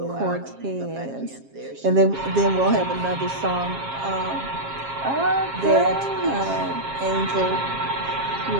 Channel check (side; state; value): left; late; 7.4 ms